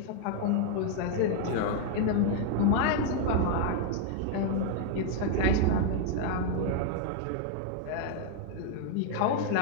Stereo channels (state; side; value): different; both; correlation 0.00